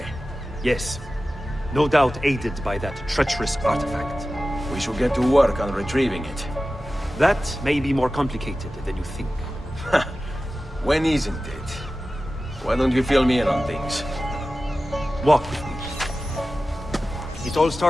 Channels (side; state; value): both; normal; correlation 0.95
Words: Yes. No doubt aided by that treacherous artifact. We should get to work on retrieving it. That may be more complicated than you think. When isn't it? Why don't you fill me in on things? Walk with me. It all